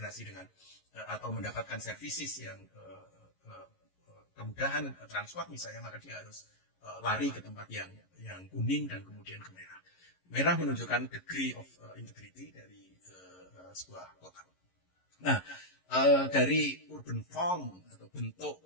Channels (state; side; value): late; right; 11 ms